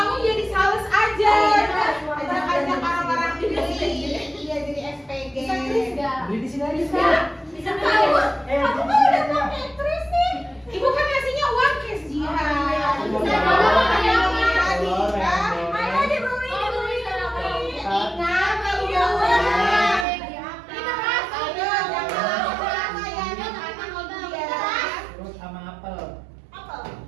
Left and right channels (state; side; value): drops out; left; at 20.1 s